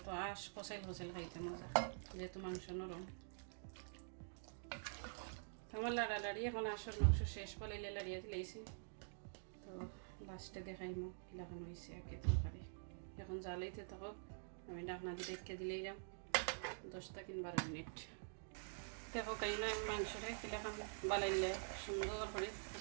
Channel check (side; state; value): left; silent; digital silence